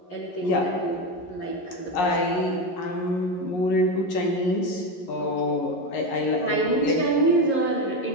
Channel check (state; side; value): late; right; 11 ms